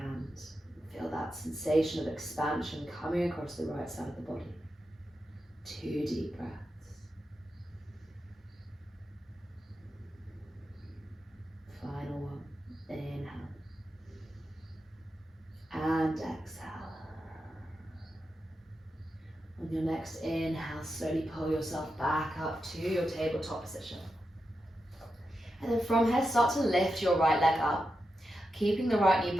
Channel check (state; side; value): normal; both; correlation 0.88